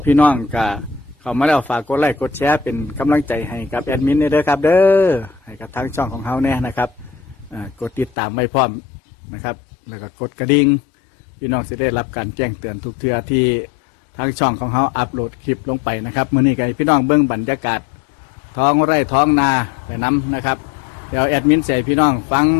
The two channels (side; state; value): right; drops out; at 8.2 s